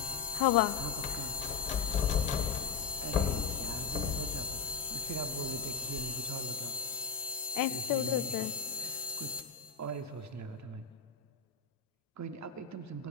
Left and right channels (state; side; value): quieter; right; 5.9 dB